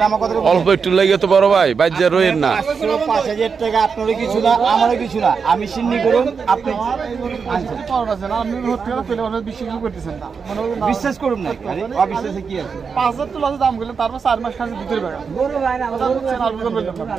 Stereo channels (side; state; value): left; quieter; 5.7 dB